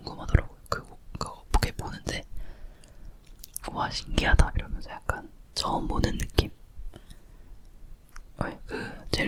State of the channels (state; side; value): identical; both; correlation 1.00